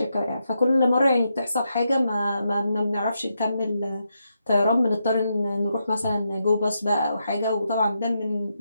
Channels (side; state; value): both; inverted; correlation -0.83